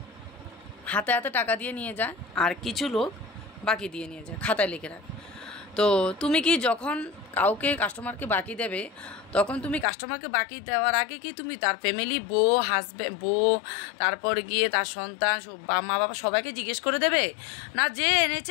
হাতে হাতে টাকা দিয়ে নিয়ে যায় আর কিছু লোক বাকি দিয়ে নিয়ে যায়, খাতায় লিখে রাখে। তো তুমি কি যখন কাউকে কাস্টমারকে বাকি দেবে, তখন তুমি কাস্টমারকে বাকি দেওয়ার আগে কি তুমি তার ফ্যামিলি, বউ, হাজব্যান্ড, বউ, তারপর গিয়ে তার সন্তান, মা বাবা সবাইকে জিজ্ঞেস করে দেবে, না যে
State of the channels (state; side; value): drops out; right; at 9.9 s